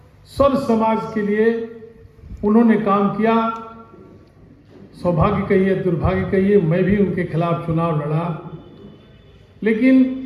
सर्व समाज के लिए उन्होंने काम किया। सौभाग्य कहिए, दुर्भाग्य कहिए, मैं भी उनके खिलाफ चुनाव लड़ा, लेकिन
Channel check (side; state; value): both; identical; correlation 1.00